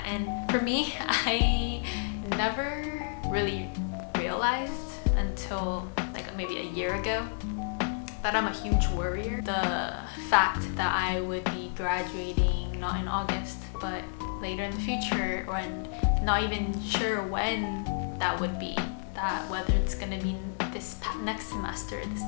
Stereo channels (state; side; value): silent; right; 57 dB below the other